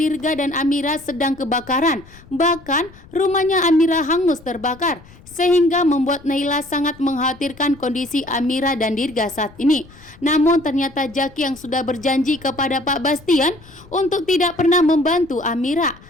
dan Amira sedang kebakaran. Bahkan rumahnya Amira hangus terbakar, sehingga membuat Naila sangat mengkhawatirkan kondisi Amira dan Dirga saat ini. Namun ternyata Jaki yang sudah berjanji kepada Pak Bastian untuk tidak pernah membantu Amira,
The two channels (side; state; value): left; noise; rumble, 23 dB below the sound